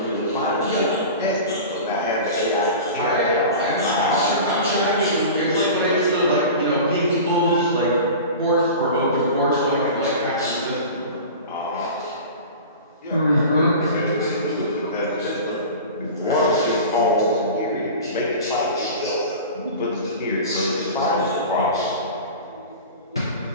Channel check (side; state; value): both; inverted; correlation -0.34